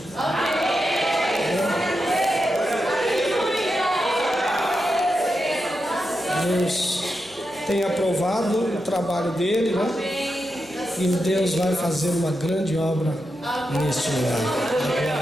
Deus tem aprovado o trabalho dele, né? E Deus vai fazer uma grande obra neste lugar.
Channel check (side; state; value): right; noise; hum, 28 dB below the sound